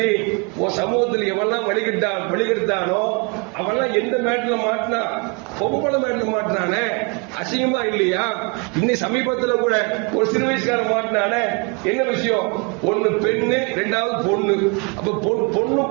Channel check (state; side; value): quieter; left; 32.3 dB